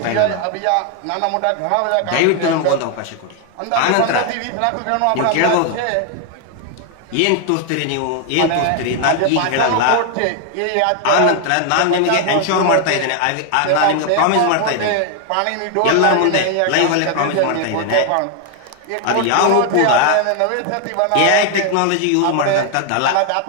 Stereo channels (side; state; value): both; different; correlation 0.00